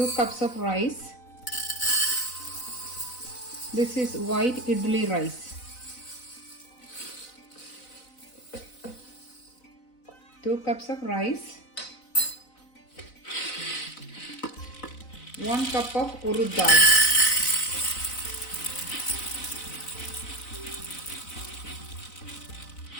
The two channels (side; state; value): right; late; 4.0 ms